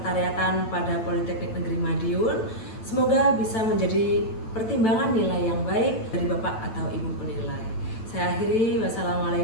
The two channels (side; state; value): right; late; 9.0 ms